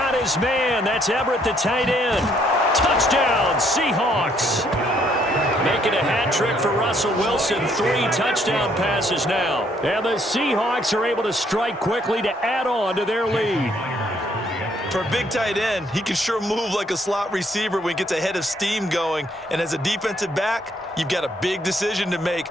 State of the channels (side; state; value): both; normal; correlation 0.68